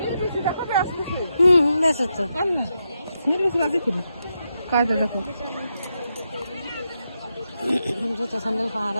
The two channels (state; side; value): inverted; both; correlation -0.85